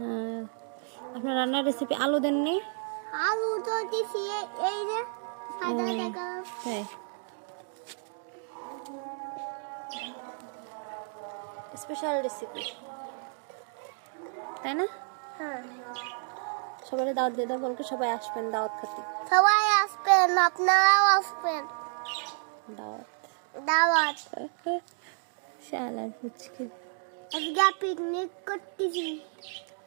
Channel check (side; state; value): left; silent; 57 dB below the other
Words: আপনার রান্নার রেসিপি আলু দেননি? আলু তো দিছি এই যে সাদা দেখা। তাই স্পেশাল রেসিপি, তাই না? হ্যাঁ, সবাই দাওয়াত দিয়ে দাও, বলকে সবাই আসবেন দাওয়াত খেতে। সবাই আসবেন, আপনারাও আসবেন। দাওয়াত দাওয়াত শালার ফুচকে। আজকে পিকনিক করতেছি।